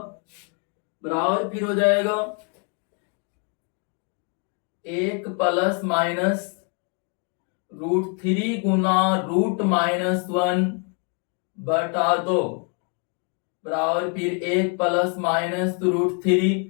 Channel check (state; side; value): quieter; right; 37.9 dB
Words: बराबर फिर हो जाएगा एक प्लस माइनस √3 गुना √-1 बटा 2 बराबर फिर एक प्लस माइनस √3